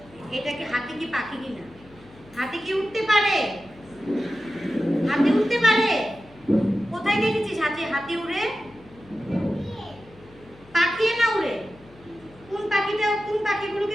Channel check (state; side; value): noise; left; hum, 24 dB below the sound